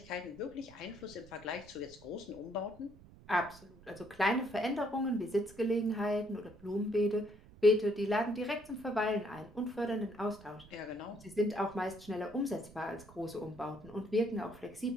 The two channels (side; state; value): right; noise; rumble, 21 dB below the sound